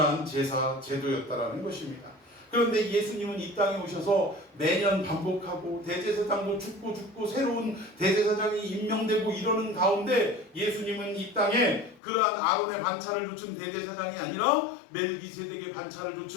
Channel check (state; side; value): drops out; right; at 12.0 s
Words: 제사 제도였다라는 것입니다. 그런데 예수님은 이 땅에 오셔서 매년 반복하고 대제사장도 죽고 새로운 대제사장이 임명되고 이러는 가운데 예수님은 이 땅에 그러한 아론의 반차를 좇은 대제사장이 아니라 멜기세덱의 반차를